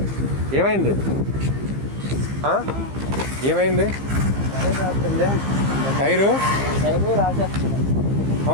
ఏమైంది? ఏమైంది? టైరు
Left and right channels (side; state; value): left; late; 15 ms